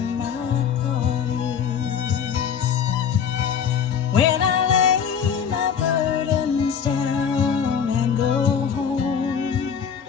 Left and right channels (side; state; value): right; quieter; 7.4 dB